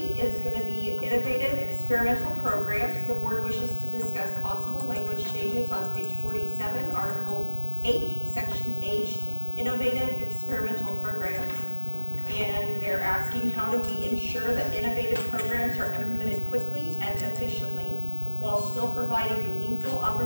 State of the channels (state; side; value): inverted; both; correlation -1.00